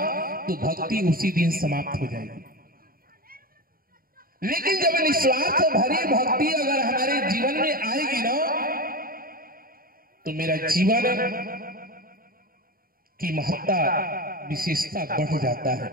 तो भक्ति उसी दिन समाप्त हो जाएगी। लेकिन जब निस्वार्थ भरी भक्ति अगर हमारे जीवन में आएगी ना, तो मेरा जीवन की महत्ता विशेषता बढ़ जाता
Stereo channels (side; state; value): left; late; 0.42 ms